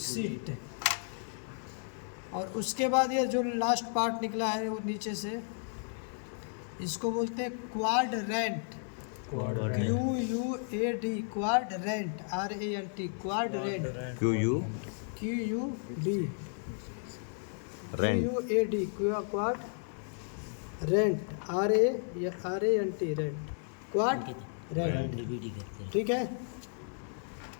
और उसके बाद ये जो लास्ट पार्ट निकला है वो नीचे से, इसको बोलते हैं quadrant. QUAD, quadrant, RANT, quadrant. QUD, QUAD, quad rent, RANT, rent, quad rent. ठीक है,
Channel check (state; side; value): silent; right; 56 dB below the other